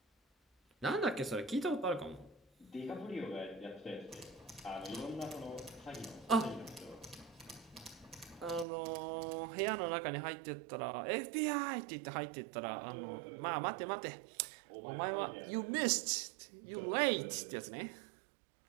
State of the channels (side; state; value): left; drops out; at 8.7 s